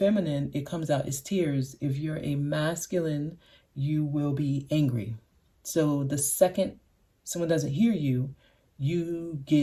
it comes out as tears. If you're a masculine, you will be angry. So the second someone doesn't hear you, you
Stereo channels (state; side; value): identical; both; correlation 1.00